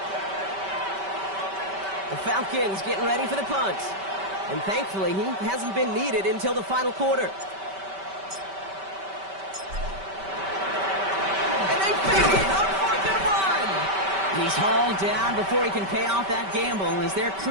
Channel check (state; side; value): late; left; 5.2 ms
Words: The Falcons getting ready for the punt. And thankfully, he hasn't been needed until the final quarter. And they fake it on 4th and 1. He's hauled down before he can pay off that gamble as their